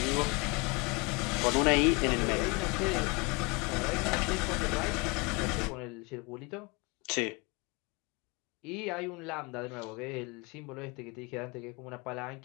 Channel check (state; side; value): quieter; right; 28.1 dB